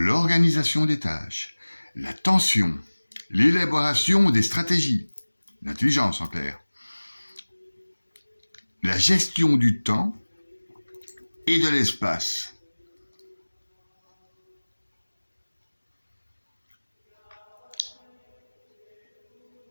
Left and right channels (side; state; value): both; inverted; correlation -1.00